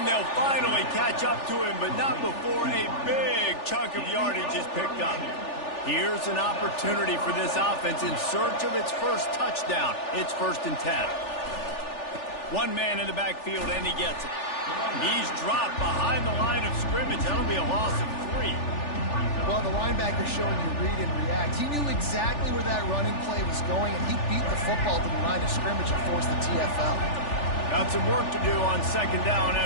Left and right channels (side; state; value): right; late; 3.4 ms